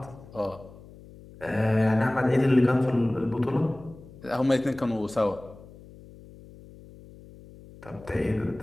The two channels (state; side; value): noise; left; hum, 20 dB below the sound